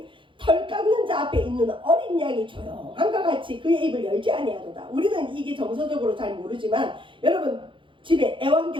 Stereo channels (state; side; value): late; left; 0.24 ms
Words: 털 깎는 자 앞에 있는 어린 양이 조용한과 같이 그의 입을 열지 아니하도다. 우리는 이게 정서적으로 잘 모르지만 여러분 집에